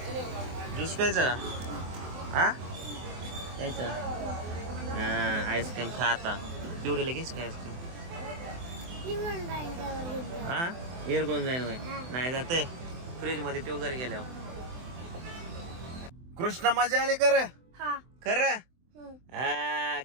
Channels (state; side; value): late; left; 24 ms